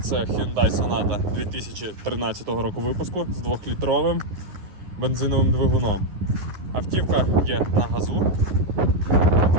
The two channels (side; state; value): left; late; 11 ms